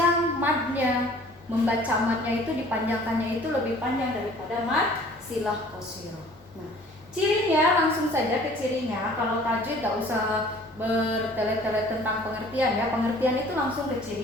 madnya, membaca madnya itu dipanjangkannya itu lebih panjang daripada mad silah qasirah. Nah, cirinya langsung saja ke cirinya. Kalau tajwid gak usah bertele-tele tentang pengertian ya. Pengertian itu langsung ke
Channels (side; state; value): both; normal; correlation 0.51